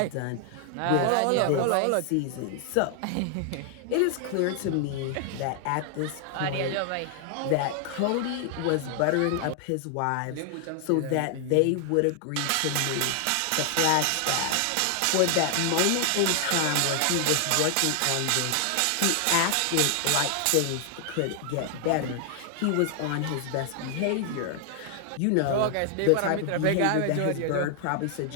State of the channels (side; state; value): both; different; correlation 0.00